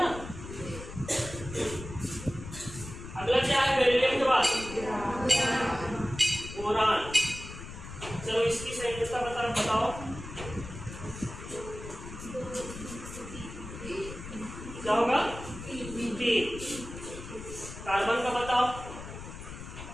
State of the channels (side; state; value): left; noise; rumble, 11 dB below the sound